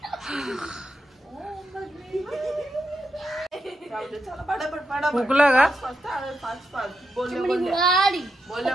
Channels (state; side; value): normal; both; correlation 0.85